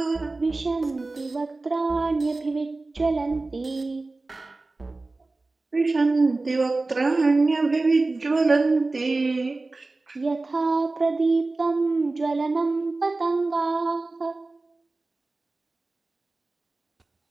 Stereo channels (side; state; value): left; quieter; 3.3 dB